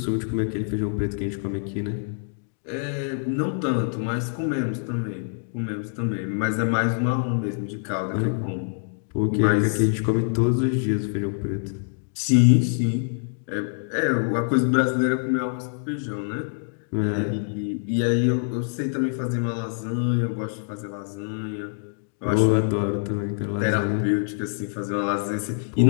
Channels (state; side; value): silent; right; digital silence